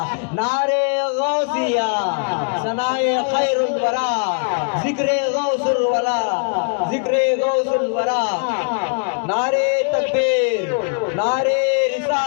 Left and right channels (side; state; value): right; quieter; 38.9 dB